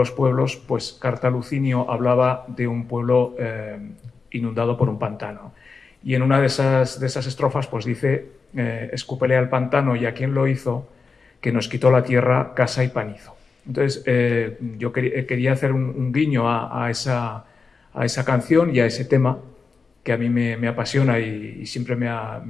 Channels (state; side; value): quieter; right; 4.7 dB